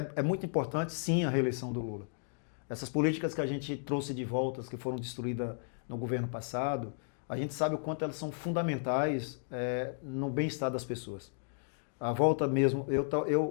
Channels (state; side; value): silent; right; digital silence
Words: muito importante, sim, a reeleição do Lula. Essas políticas que a gente trouxe de volta, que foram destruídas no governo passado, a gente sabe o quanto elas são fundamentais no bem-estar das pessoas. A volta mesmo,